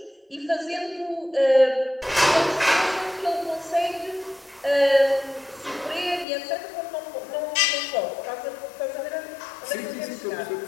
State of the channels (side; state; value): right; drops out; at 6.2 s